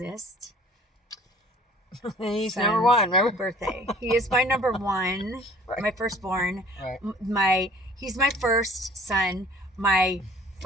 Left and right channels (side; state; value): both; normal; correlation 0.51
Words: He's son's number one, remember? Birthday. He is my number one. Right. My firstborn. Right. He's my first son. My